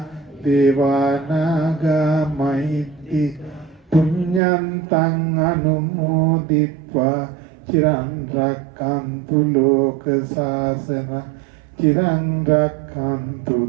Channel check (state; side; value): drops out; left; at 4.4 s